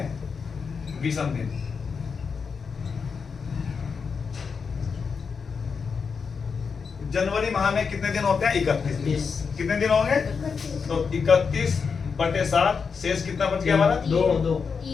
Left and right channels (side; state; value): right; quieter; 5.6 dB